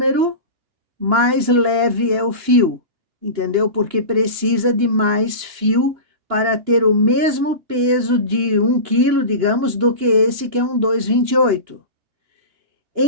mais leve é o fio, entendeu? Porque precisa de mais fio para ter o mesmo peso de 1 quilo, digamos, do que esse que é um 2,28.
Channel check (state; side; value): late; left; 2.9 ms